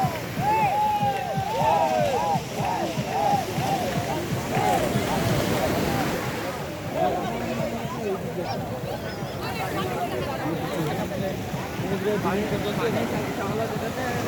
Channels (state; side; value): identical; both; correlation 1.00